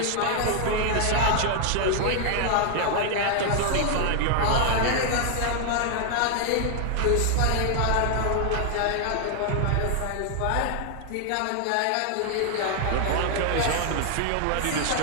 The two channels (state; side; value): different; both; correlation 0.00